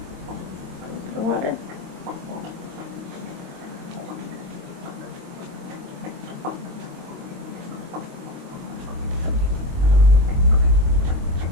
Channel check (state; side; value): late; left; 23 ms